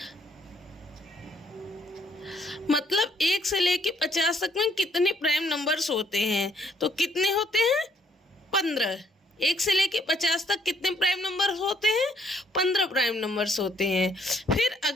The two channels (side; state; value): both; normal; correlation 0.67